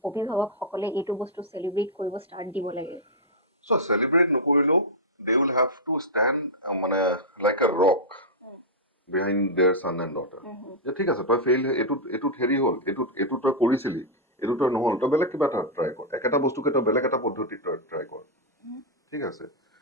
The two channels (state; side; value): normal; both; correlation -0.06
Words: অভিভাৱকসকলে এইটো বস্তু চেলিব্ৰেট কৰিব ষ্টাৰ্ট দিব লাগে? চ' চেলিব্ৰেট নকৰিলেও they will have to stand মানে like a rock behind their son and daughter. যে ঠিক আছে, তই ফেইল, এইটোত হেৰি হ'ল, এইটো তই কৰিছিলি, এইটো তই নহ'ল, তই বেলেগ কিবা এটা ট্ৰাই কৰ, একেটা বস্তুকে তই বেলেগ এটা পদ্ধতিত তই ট্ৰাই কৰ। ঠিক আছে,